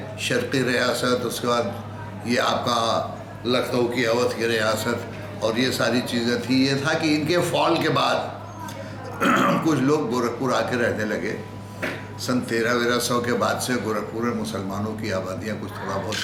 शर्क़ी रियासत, उसके बाद ये आपका लखनऊ की अवध की रियासत और ये सारी चीज़ें थी। ये था कि इनके फॉल के बाद कुछ लोग गोरखपुर आके रहने लगे। सन 1300 के बाद से गोरखपुर में मुसलमानों की आबादियाँ कुछ थोड़ा बहुत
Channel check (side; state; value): both; identical; correlation 1.00